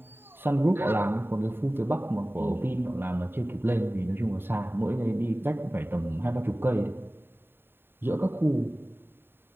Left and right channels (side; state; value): left; late; 0.11 ms